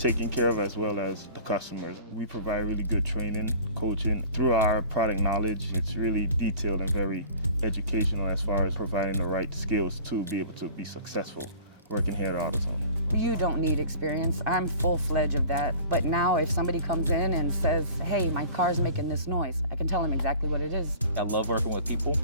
care of as well as the customers. We provide really good training, coaching. Through our product knowledge, it's really detailed and very educational as far as providing the right skills to be able to be successful working here at AutoZone. You don't need experience. I'm full-fledged of that. But now if somebody comes in and says, hey, my car's making this noise, I can tell them exactly what it is. I love working with people.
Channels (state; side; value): inverted; both; correlation -0.44